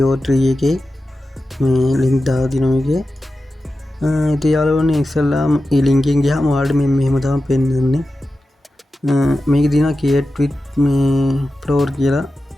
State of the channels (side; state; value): both; normal; correlation 0.93